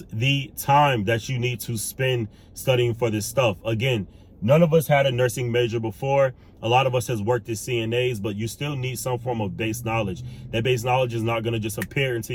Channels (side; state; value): both; identical; correlation 1.00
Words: the time that you need to spend studying for this stuff. Again, none of us had a nursing major before. A lot of us has worked as CNAs, but you still need some form of base knowledge. That base knowledge is not going to just appear into